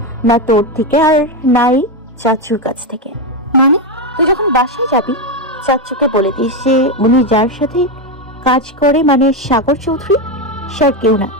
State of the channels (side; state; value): both; normal; correlation 0.09